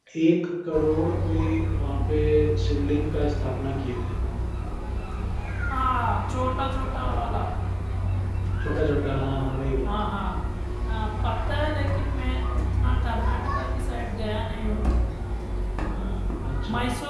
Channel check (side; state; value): both; identical; correlation 1.00